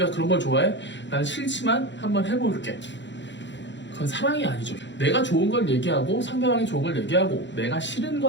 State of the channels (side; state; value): right; late; 0.53 ms